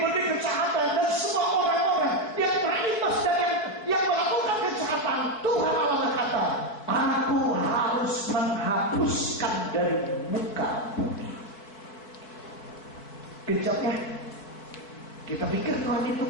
kejahatan dan semua orang-orang yang terimbas dan yang melakukan kejahatan, Tuhan Allah berkata, aku harus menghapuskan dari muka bumi. Kejamnya, kita pikir Tuhan itu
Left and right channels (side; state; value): right; late; 4.7 ms